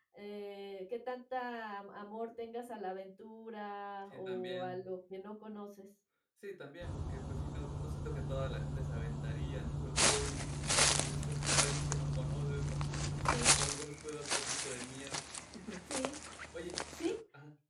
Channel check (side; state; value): both; identical; correlation 1.00